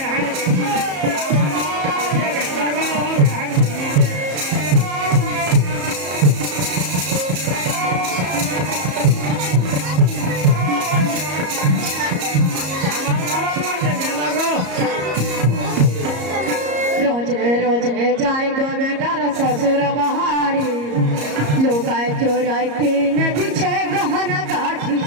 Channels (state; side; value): late; left; 34 ms